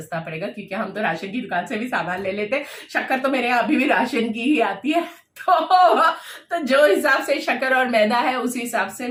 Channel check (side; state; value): both; identical; correlation 1.00